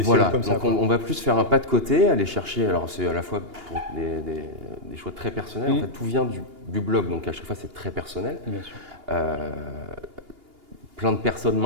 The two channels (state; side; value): late; left; 2.8 ms